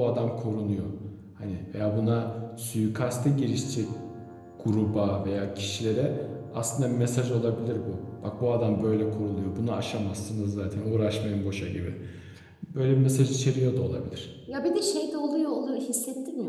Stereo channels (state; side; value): identical; both; correlation 1.00